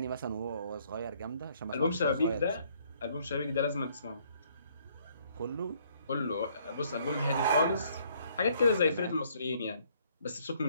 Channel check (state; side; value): inverted; both; correlation -0.65